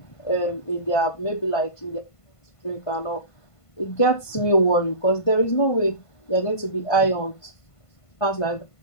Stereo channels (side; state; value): right; late; 1.5 ms